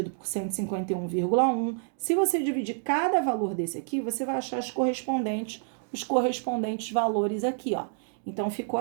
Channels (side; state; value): left; silent; 59 dB below the other